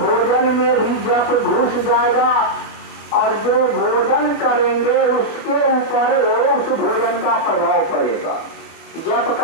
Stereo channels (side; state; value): right; late; 24 ms